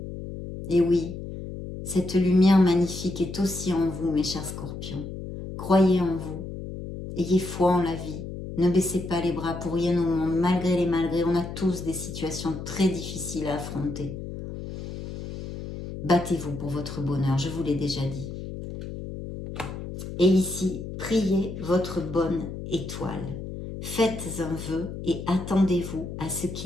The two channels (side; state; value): left; noise; hum, 9 dB below the sound